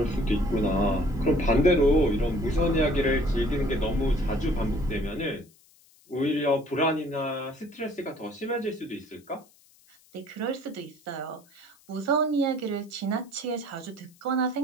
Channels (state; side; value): noise; left; hiss, 29 dB below the sound